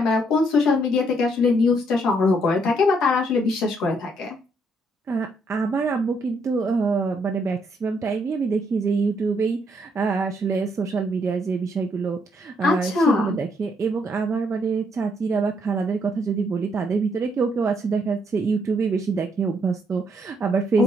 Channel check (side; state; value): both; normal; correlation 0.72